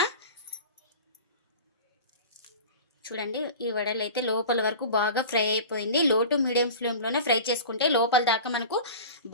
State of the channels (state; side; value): inverted; both; correlation -0.35